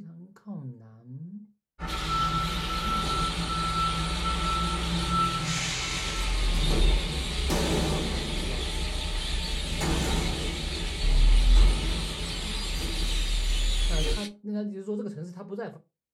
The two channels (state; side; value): identical; both; correlation 1.00